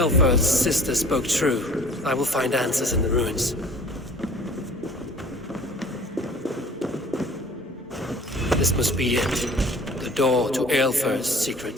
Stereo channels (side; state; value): both; normal; correlation 0.49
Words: sister spoke true, I will find answers in the ruins. This must be it. The door to Aelfir's